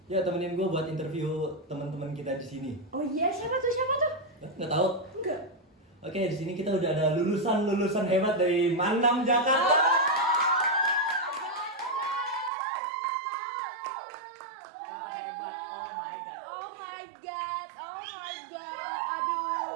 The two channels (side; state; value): left; drops out; at 12.5 s